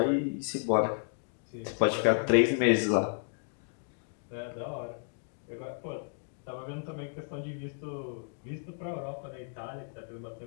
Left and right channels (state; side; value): silent; right; 56 dB below the other